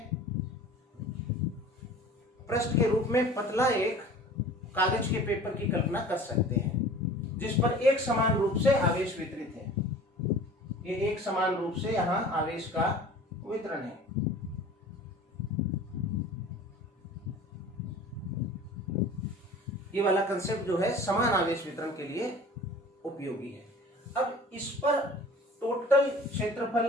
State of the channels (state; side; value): normal; both; correlation 0.44